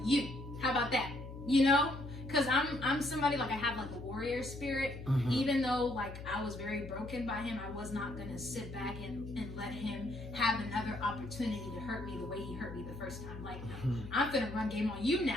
you. How about that? You know? Because I'm somebody, like, I have like a warrior spirit. Even though like I was very broken by him, I was not gonna sit back and let him have another opportunity to hurt me the way he hurt me the first time. Like, I'm gonna run game on you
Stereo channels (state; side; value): noise; left; hum, 11 dB below the sound